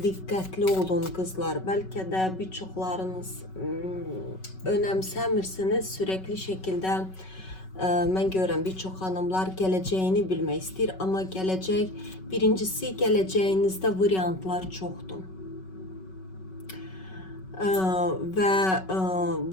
dikkatli olun kızlar. Belki de birçoklarınız önemsemirsiniz. Sürekli şekilde ben görürüm birçok hanımlar geleceğini bilmek ister ama gelecek birincisi geleceğinizde varyantlar çoktur. Ve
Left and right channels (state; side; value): late; right; 5.3 ms